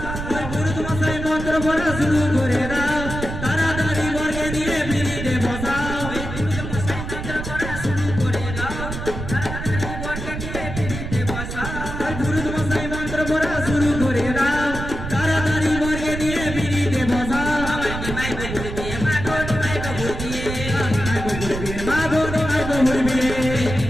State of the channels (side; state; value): right; noise; rumble, 6 dB below the sound